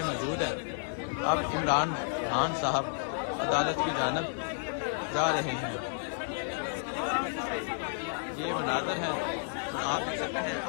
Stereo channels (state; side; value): silent; right; digital silence